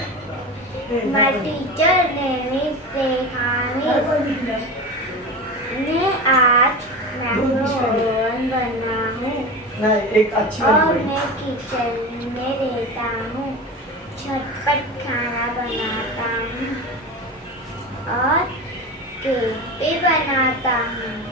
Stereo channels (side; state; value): both; normal; correlation 0.27